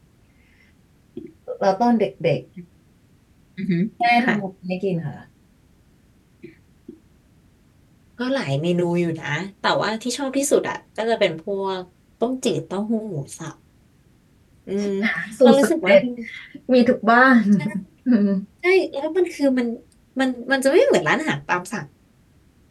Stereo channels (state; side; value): identical; both; correlation 1.00